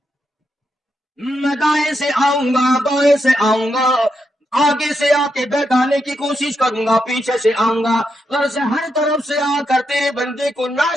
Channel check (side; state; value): both; normal; correlation 0.83